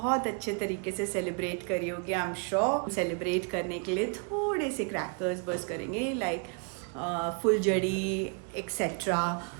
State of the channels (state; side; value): quieter; left; 39.1 dB